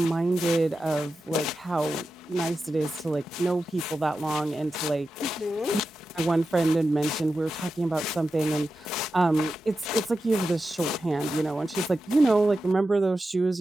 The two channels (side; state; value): both; normal; correlation 0.91